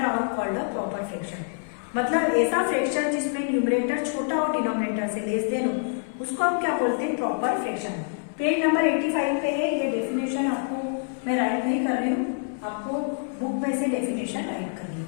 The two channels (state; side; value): silent; right; 61 dB below the other